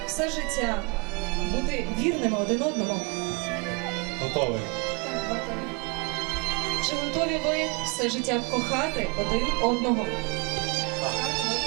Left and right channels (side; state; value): left; quieter; 29.8 dB